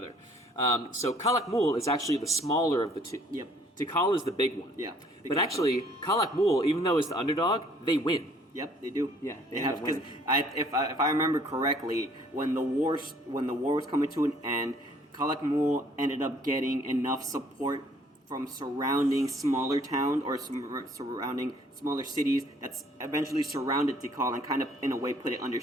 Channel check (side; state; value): both; normal; correlation 0.60